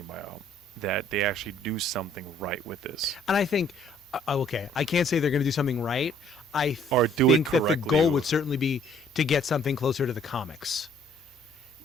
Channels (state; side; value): normal; both; correlation 0.61